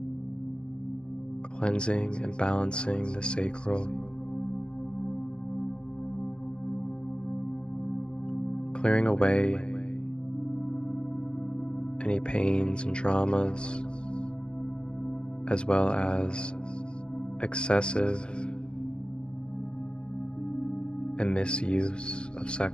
cleansing and balancing the sacral, clearing away any pains and traumas, as well as excessive and misuse of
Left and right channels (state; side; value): late; right; 0.055 ms